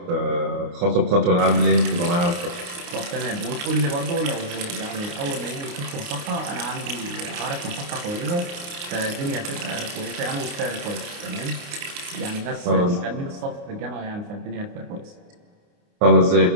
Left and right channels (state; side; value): late; left; 29 ms